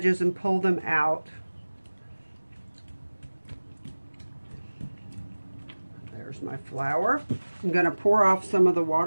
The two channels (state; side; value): inverted; both; correlation -1.00